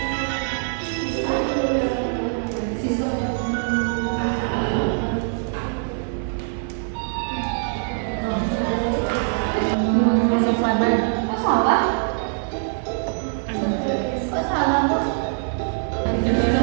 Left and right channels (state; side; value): silent; left; digital silence